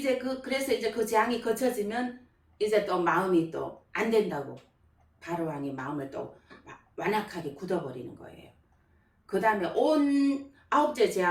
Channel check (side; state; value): both; identical; correlation 1.00